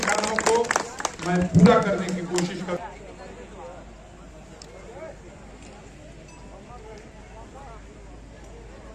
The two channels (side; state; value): both; identical; correlation 1.00